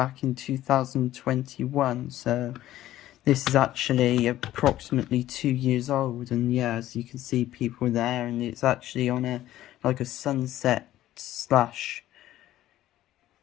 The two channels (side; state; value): right; quieter; 14.0 dB